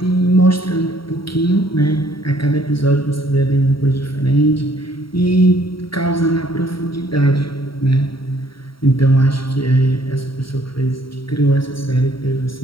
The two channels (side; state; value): right; late; 0.74 ms